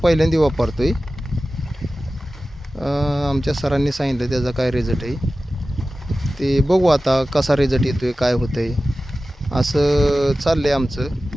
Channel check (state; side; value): normal; both; correlation 0.95